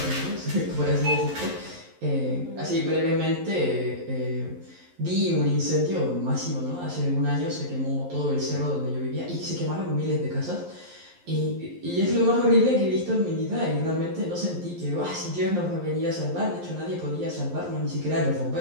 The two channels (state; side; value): late; left; 11 ms